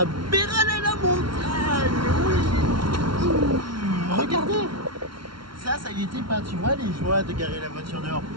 Béralé-la-Montagne. Oui. Regardez. Ça y était pas, tu vois, les joies de garer la voiture dehors.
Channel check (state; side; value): late; left; 0.73 ms